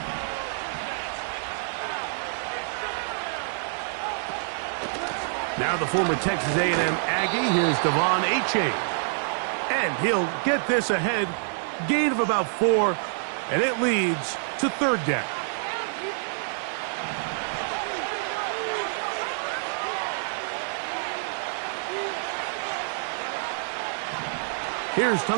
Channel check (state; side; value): silent; left; digital silence